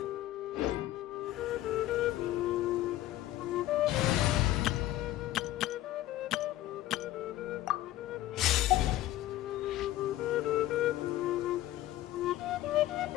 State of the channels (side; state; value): right; quieter; 14.7 dB